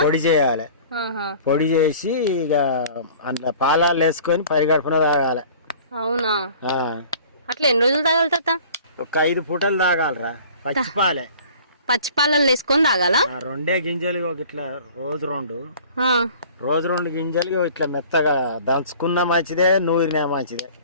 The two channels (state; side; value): inverted; both; correlation -0.47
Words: పొడి చేయాలి. పొడి చేసి ఇక అందులో పాలాలు వేసుకొని పరిగడుపున తాగాలి. అవునా, అట్లా ఎన్ని రోజులు తాగాలి తాత? ఒక 5 పూటలు తాగాలరా. పచ్చిపాలే, పచ్చిపాలల్లో వేసుకొని తాగాలా? 2 గింజలు ఇట్లా రోజు 2 గింజలు ఇట్లా మెత్తగా దంచుకున్నా మంచిదే, నూరినా మంచిదే.